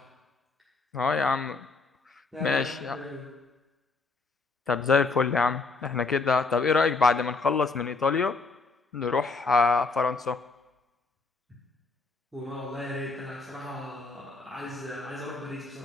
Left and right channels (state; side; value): quieter; right; 4.0 dB